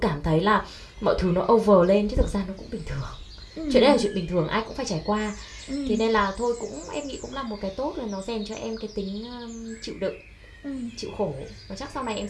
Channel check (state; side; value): identical; both; correlation 1.00